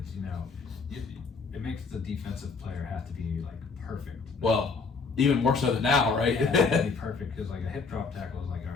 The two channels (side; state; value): right; quieter; 4.7 dB